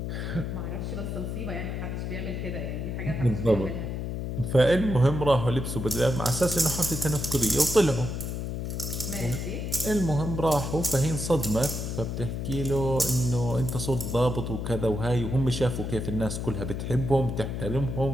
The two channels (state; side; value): noise; left; hum, 4 dB below the sound